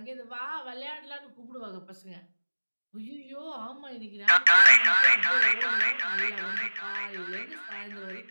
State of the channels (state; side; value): inverted; both; correlation -1.00